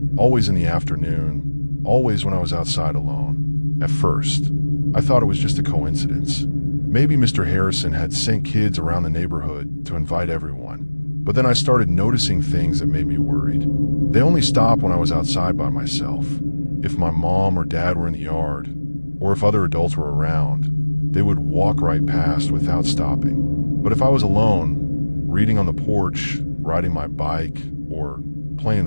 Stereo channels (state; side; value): inverted; both; correlation -1.00